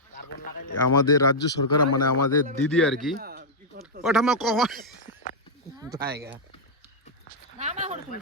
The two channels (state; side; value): normal; both; correlation -0.06